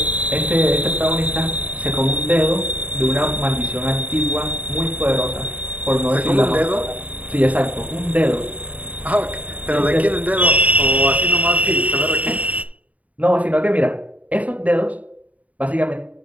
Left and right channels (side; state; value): left; late; 0.070 ms